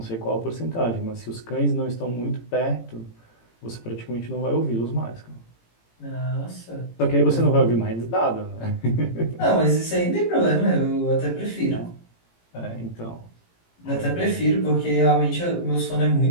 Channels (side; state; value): right; late; 18 ms